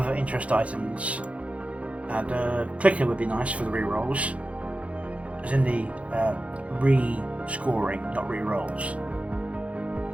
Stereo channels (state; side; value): late; left; 0.064 ms